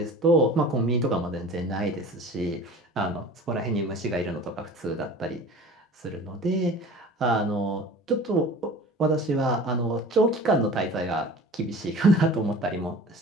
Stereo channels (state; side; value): normal; both; correlation 0.41